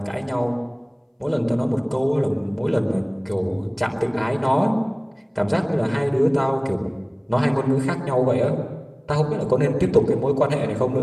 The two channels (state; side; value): identical; both; correlation 1.00